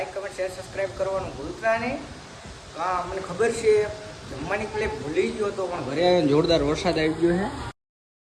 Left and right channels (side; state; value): both; identical; correlation 1.00